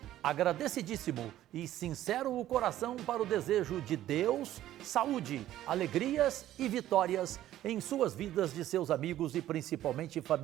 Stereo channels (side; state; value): left; quieter; 13.3 dB